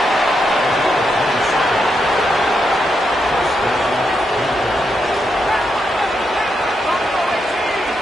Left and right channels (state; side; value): normal; both; correlation 0.82